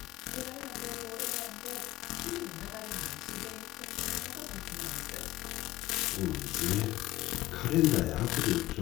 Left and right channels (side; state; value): right; quieter; 16.9 dB